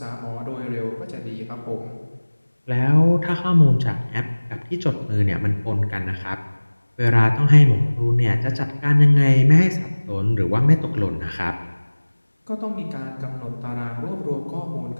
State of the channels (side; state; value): both; inverted; correlation -1.00